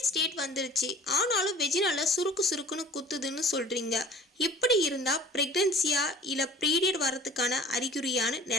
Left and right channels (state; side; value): normal; both; correlation 0.46